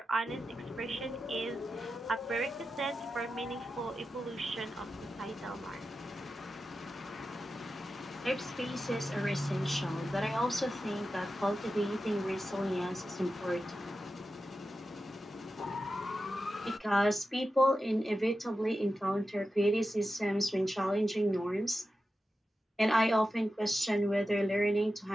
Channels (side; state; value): both; normal; correlation 0.91